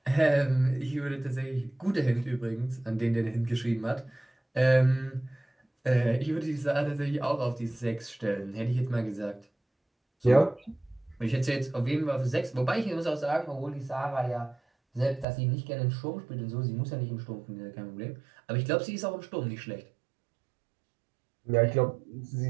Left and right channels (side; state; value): left; drops out; at 15.2 s